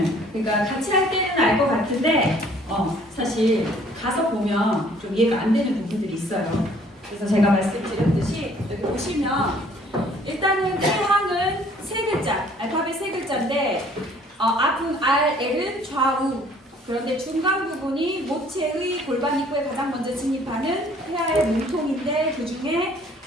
그러니까 같이 할 때는 알 것 같은데 사실 가서 보면 좀 이해가 안 되는 부분들이 있어요. 그래서 제가 말씀드렸듯이 여기 보시면 일단은 태향은 세 글자, 알파벳 세 글자인데 앞은 R, L은 좌우. 그런데 중간 부분이 모체의 골반 입구에 가장 먼저 진입하는 태아의 몸통인데 그 중에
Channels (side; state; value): both; normal; correlation 0.58